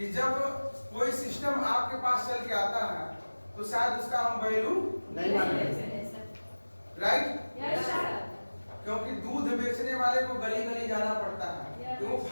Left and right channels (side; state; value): both; inverted; correlation -1.00